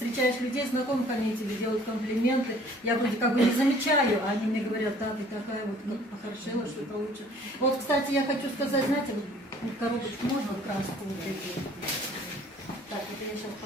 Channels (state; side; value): normal; both; correlation 0.54